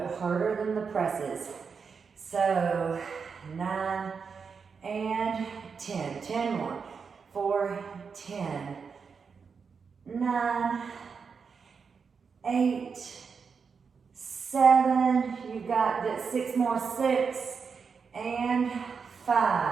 harder than the presses. So 9 and 10. 10 more. 4, 10. 9, 8, 7. You got that. 6 more. 6 and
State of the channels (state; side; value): quieter; left; 5.7 dB